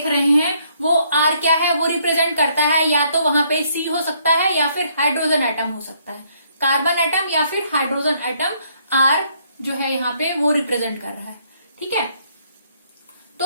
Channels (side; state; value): both; inverted; correlation -0.68